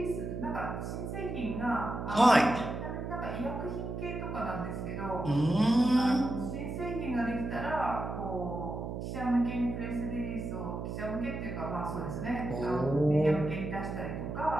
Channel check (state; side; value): noise; right; hum, 5 dB below the sound